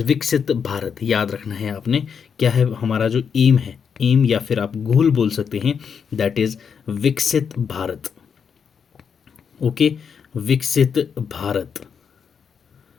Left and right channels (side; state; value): right; quieter; 6.8 dB